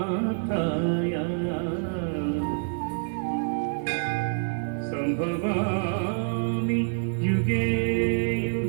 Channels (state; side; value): silent; left; 60 dB below the other